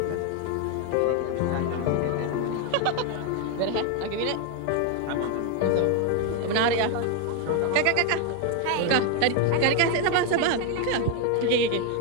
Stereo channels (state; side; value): different; both; correlation 0.01